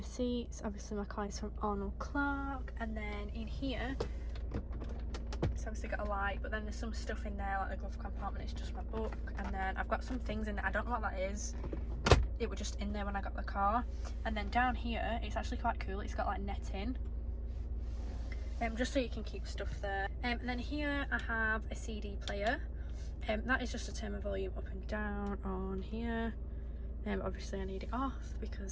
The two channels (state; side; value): identical; both; correlation 1.00